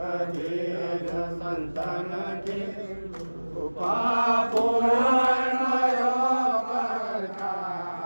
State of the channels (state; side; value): inverted; both; correlation -1.00